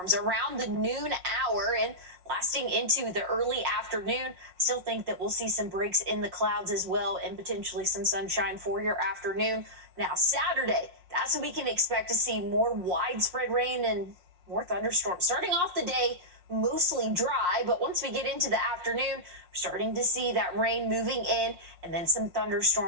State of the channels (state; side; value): late; left; 5.5 ms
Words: around the noon hour and lasting into the early afternoon. Still think that we'll see some breaks in the clouds as well and potentially some sunshine for your afternoon. Now, Saturday, that's when we can expect to see more widespread rain and more thunderstorms. Starting off the day, mostly dry, but once we get into the afternoon, we're starting to see that rain moving in and then some